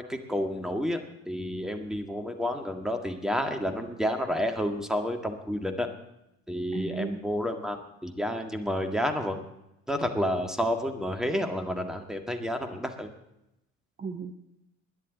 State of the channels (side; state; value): both; normal; correlation 0.77